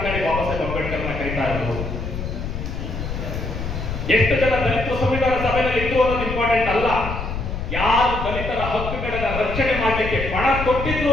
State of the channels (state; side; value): noise; left; rumble, 5 dB below the sound